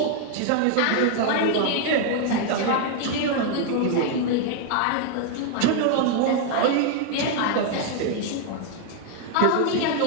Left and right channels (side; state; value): both; different; correlation 0.00